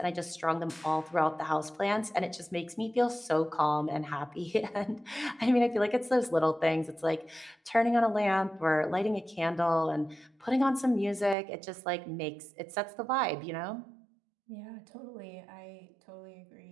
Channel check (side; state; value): left; drops out; at 11.4 s